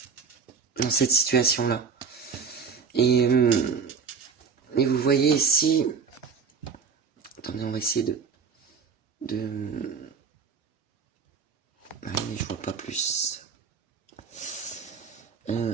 dans cette situation-là. Et vous voyez ici... Attendez, on va essayer Ah oui, mais je vois pas plus.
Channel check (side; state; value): left; quieter; 5.7 dB